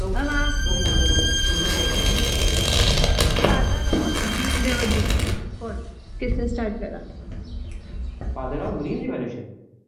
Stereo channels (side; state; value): both; identical; correlation 1.00